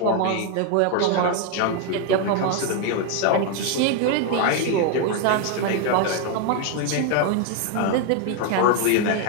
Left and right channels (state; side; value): different; both; correlation 0.01